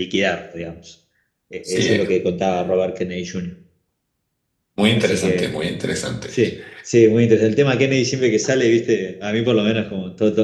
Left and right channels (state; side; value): identical; both; correlation 1.00